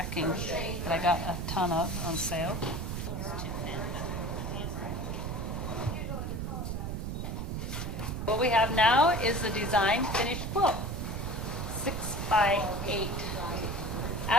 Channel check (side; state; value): right; noise; rumble, 3 dB below the sound